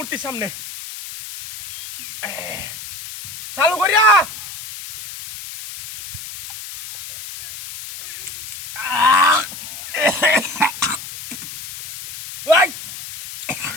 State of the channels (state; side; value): noise; left; hiss, 11 dB below the sound